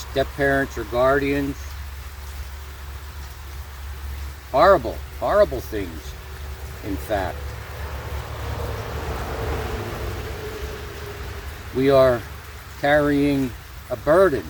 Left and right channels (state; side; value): identical; both; correlation 1.00